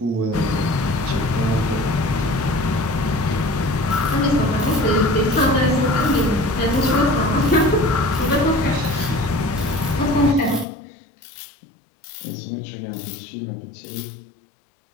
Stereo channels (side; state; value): right; drops out; at 10.7 s